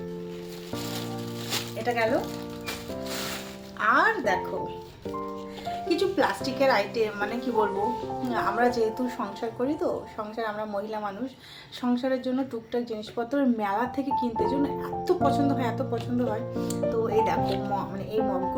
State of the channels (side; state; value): both; identical; correlation 1.00